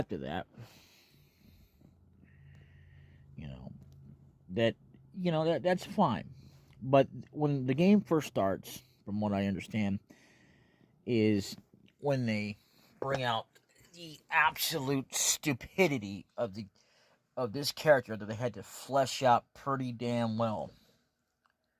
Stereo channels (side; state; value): both; identical; correlation 1.00